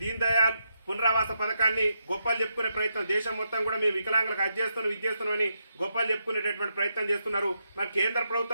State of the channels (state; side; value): inverted; both; correlation -0.82